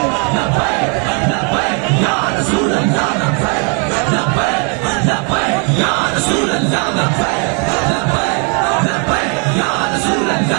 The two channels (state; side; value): quieter; left; 36.9 dB